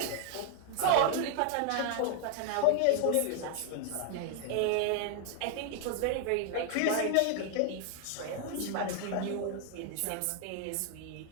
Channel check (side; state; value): both; different; correlation 0.00